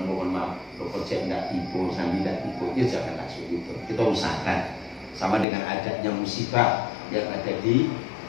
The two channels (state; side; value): drops out; right; at 5.5 s